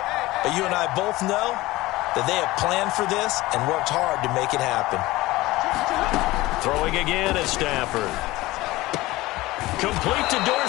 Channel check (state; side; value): quieter; right; 19.0 dB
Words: but you and I both know that they have planned for this and worked hard to make it happen. Throwing again at Stafford. Complete to